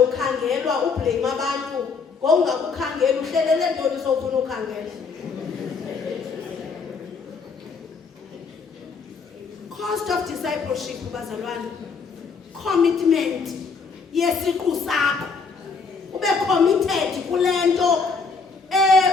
ublame abantu ngokungakukhangela uhlelele ntoni sofuna ukhangela. Cost of discipleship bazalwane commitment yesiqu sakho ube committed kulento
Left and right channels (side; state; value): right; quieter; 5.0 dB